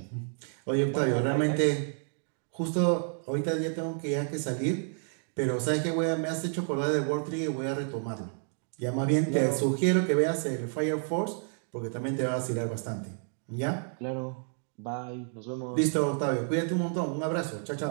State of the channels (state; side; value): silent; left; 55 dB below the other